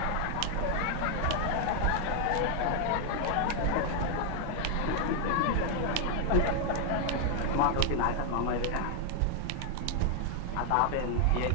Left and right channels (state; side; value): different; both; correlation 0.00